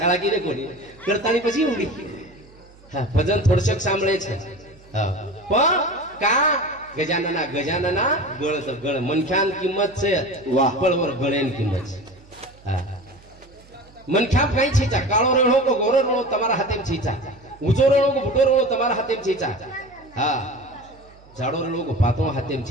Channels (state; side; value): noise; right; hum, 25 dB below the sound